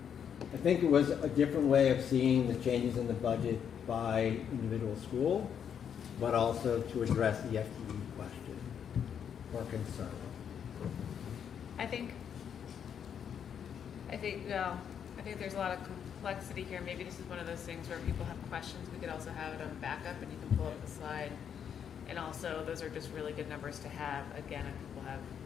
I think it was a different way of seeing the changes in the budget by individual school, but also to address the FTE question or concern. I think there's a lot of complexity here. Maybe this is one of those things where people have questions. We could also have it on backup and you can pull up the slide. And also, those are just really good numbers to have, again, if people have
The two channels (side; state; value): right; quieter; 8.1 dB